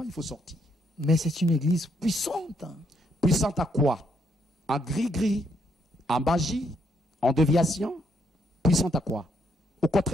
il faut sortir. Mais c'est une église puissante. Puissante à quoi? En gris-gris, en magie, en déviation. Puissante à quoi? Au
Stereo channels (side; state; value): both; normal; correlation 0.74